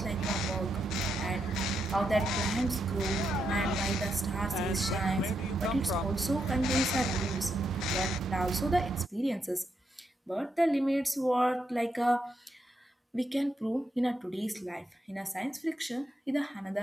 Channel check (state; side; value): normal; both; correlation 0.82